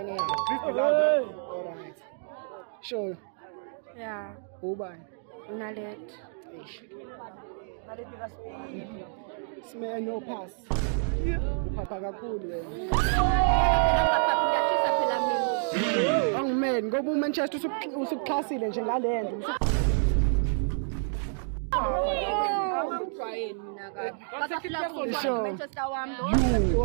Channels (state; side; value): silent; left; digital silence